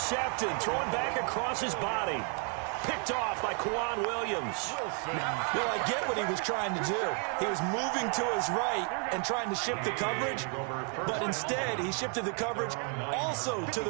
Thrown back across his body. Picked off by Kwan Williams. Well, I get what he was trying to do. He was moving to his right and trying to shift the coverage, but instead he shifted the coverage also to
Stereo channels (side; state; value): left; quieter; 39.5 dB